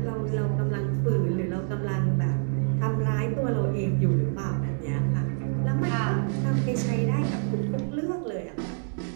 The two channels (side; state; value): left; silent; 60 dB below the other